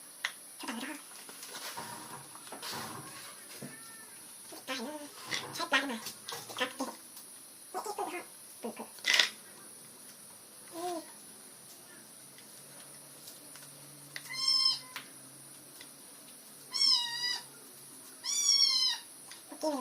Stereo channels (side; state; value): both; identical; correlation 1.00